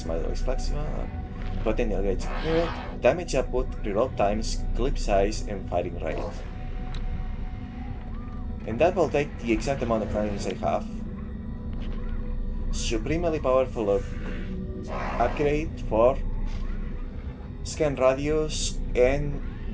model is flexible, potential gauge accurate, damage output, reload times, clip size, and firing rate. And that will take the exact amount of rounds I have. Supremely powerful upgrade for scan radius and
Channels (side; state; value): both; identical; correlation 1.00